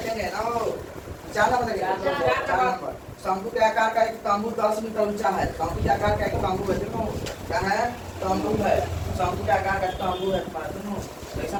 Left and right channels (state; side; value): identical; both; correlation 1.00